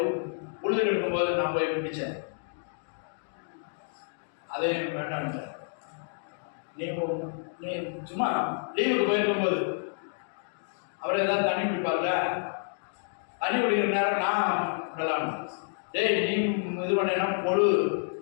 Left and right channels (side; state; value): right; silent; digital silence